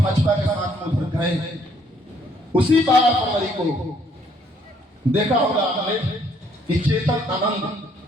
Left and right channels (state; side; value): normal; both; correlation 0.66